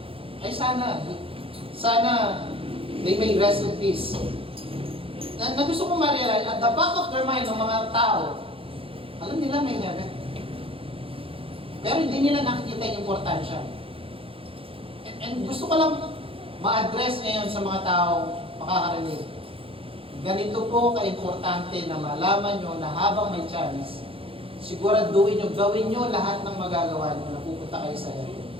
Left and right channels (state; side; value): late; left; 0.27 ms